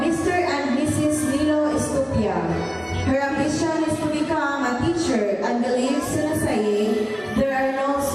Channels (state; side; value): identical; both; correlation 1.00